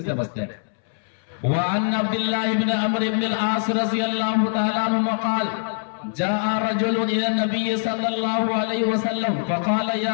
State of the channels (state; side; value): silent; right; 63 dB below the other